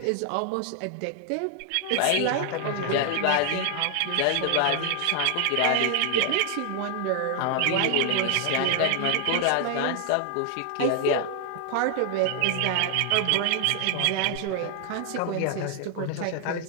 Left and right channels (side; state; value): both; different; correlation 0.00